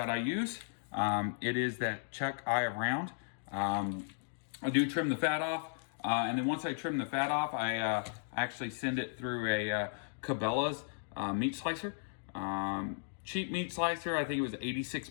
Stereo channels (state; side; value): silent; right; digital silence